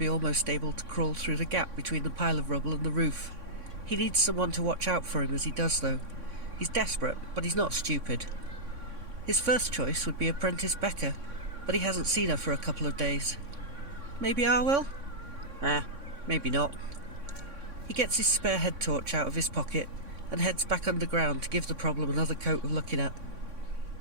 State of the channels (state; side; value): late; left; 3.6 ms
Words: almost able to crawl through the gap between the pile of rubble and the roof. He needs someone to watch out for him as he does, though. He's desperate, but he's not stupid. His first choice would be apprentice Becca, but he hasn't seen her for a couple of days. Maybe Arwell? Maybe not. He gets his spare head torch out of his pocket and heads back underground to give the problem another coat of looking at.